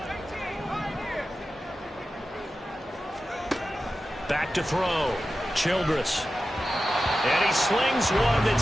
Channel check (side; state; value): both; normal; correlation 0.93